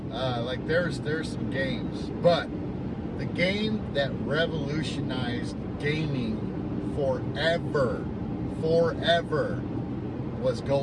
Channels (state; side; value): identical; both; correlation 1.00